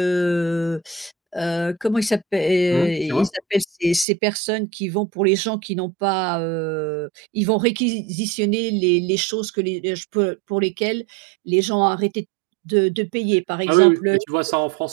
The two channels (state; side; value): drops out; left; at 4.0 s